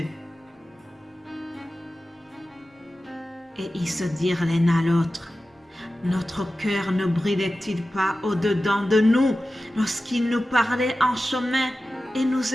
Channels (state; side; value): normal; both; correlation 0.94